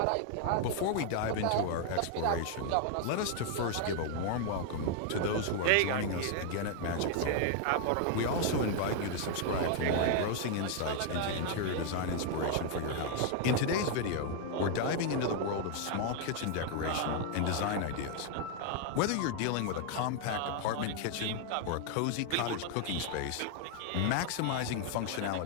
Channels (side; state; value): both; different; correlation 0.00